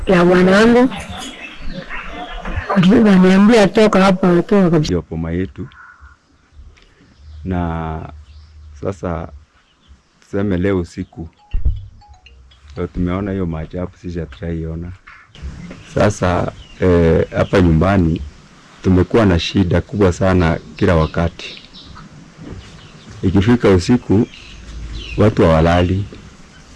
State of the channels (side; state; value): both; identical; correlation 1.00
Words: Ya wanangu niambia toka hapa, toka kabisa boma yetu. Na sasa tuseme leo usiku ndio tumeona hiyo maajabu, sisi hatujaiona. Sasa hapa nyumbani tumekuwa na shida kubwa sana kila wakati. Ikifika usiku watu hawalali.